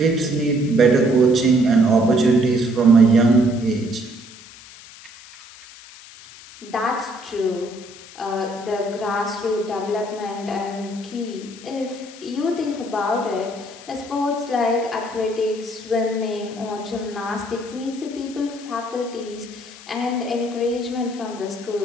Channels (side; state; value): left; noise; hiss, 19 dB below the sound